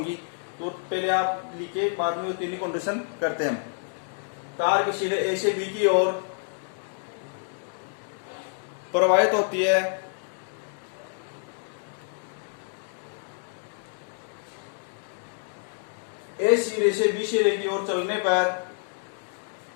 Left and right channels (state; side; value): silent; right; digital silence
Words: तो पहले आप लिखिए, बाद में वो तीन कंडीशन करते हैं। तार के सिरे ए से बी की ओर प्रवाहित होती है। ए सिरे से बी सिरे की ओर चलने पर,